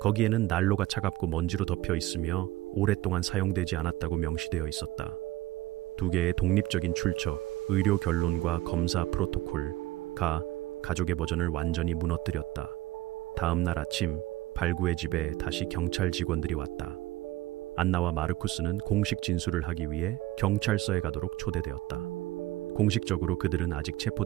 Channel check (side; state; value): left; quieter; 16.8 dB